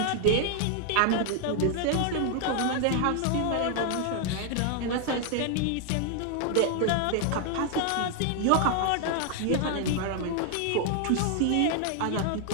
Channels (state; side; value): different; both; correlation 0.00